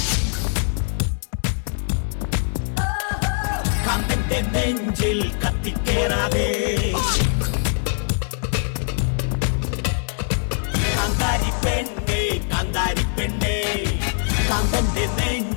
കാന്തന്റെ നെഞ്ചിൽ കത്തിക്കേറാതെ കാന്താരി പെണ്ണേ കാന്തന്റെ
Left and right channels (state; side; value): silent; right; digital silence